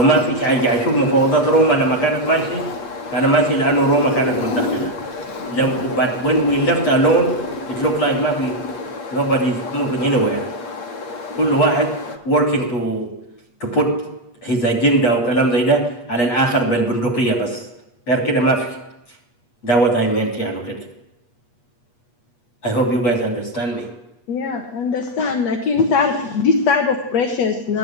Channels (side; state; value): right; late; 8.4 ms